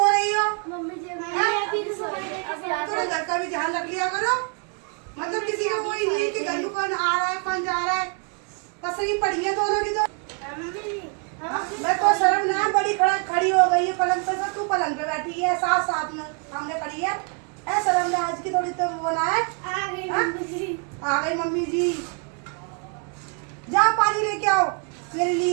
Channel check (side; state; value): left; quieter; 37.7 dB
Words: रही हो। थोड़ा घर का भी ध्यान रख लिया करो। मतलब किसी का कोई नहीं कि घर में कौन आ रहा है कौन जा रहा है। पसरी पड़ी है दोनों की तो। मैं तो शर्म ना बड़ी खड़ी हो गई है पलंग पे। तू पलंग पे बैठी है, साथ साथ में सामने खड़ी है। ऐ शर्म ना आज की थोड़ी तो वो ना है। आ गई मम्मी जी। जाओ पानी लेके आओ मेरे